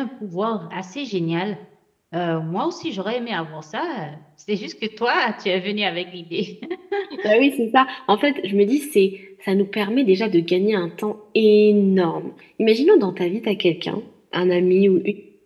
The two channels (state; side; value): identical; both; correlation 1.00